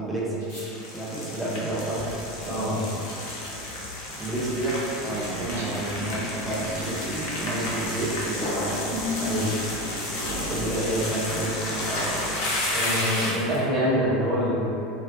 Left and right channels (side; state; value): both; normal; correlation 0.22